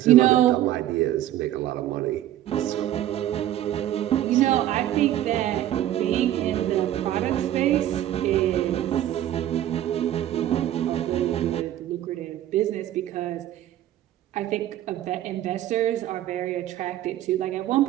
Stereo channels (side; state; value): left; quieter; 12.7 dB